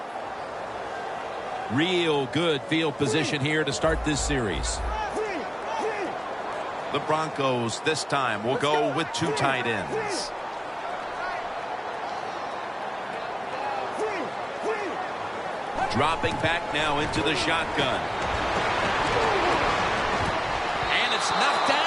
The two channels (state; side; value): identical; both; correlation 1.00